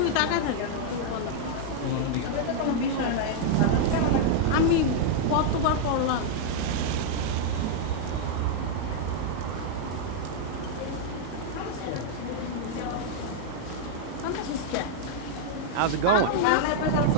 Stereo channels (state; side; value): different; both; correlation -0.01